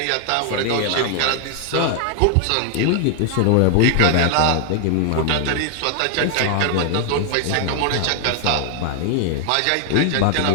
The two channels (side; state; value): both; different; correlation 0.00